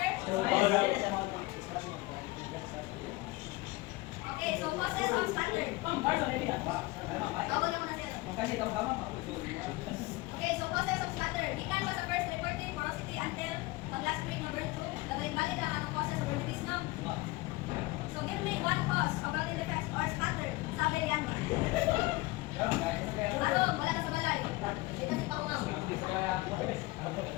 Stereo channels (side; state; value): right; quieter; 21.5 dB